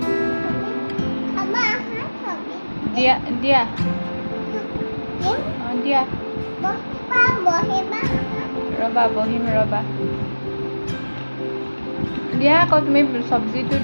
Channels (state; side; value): inverted; both; correlation -1.00